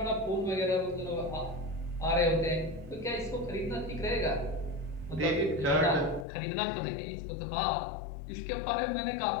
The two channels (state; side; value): drops out; right; at 6.2 s